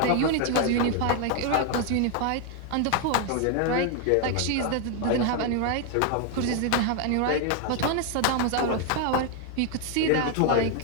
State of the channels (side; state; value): both; different; correlation 0.01